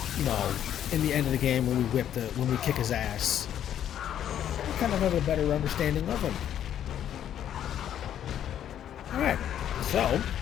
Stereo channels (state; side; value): quieter; right; 10.3 dB